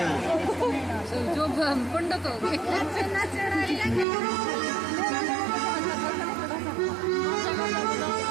जो पंडित हो गए।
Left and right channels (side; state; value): left; drops out; at 4.0 s